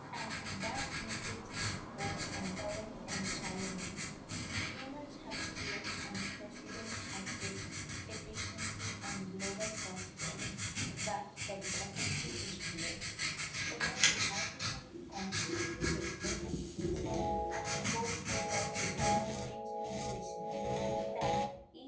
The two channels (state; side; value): identical; both; correlation 1.00